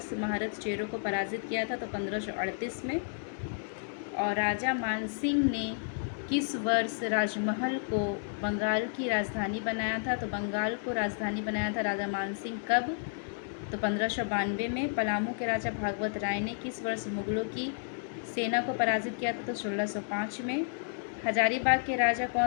महारथ चेरो को पराजित किया था, तो 1538 में। और राजा मान सिंह ने किस वर्ष राजमहल को बंगाल की राजधानी बनाया था। तो बंगाल को राजधानी बनाया था राजा मान सिंह कब, तो 1592 में। पलामू के राजा भागवत राय ने किस वर्ष मुगलों की सेना को पराजित किया था, तो 1605 में। हजारीबाग के राजा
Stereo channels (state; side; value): silent; right; digital silence